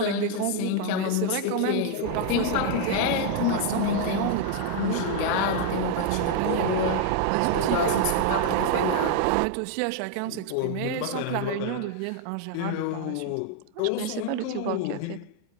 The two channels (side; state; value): both; different; correlation 0.00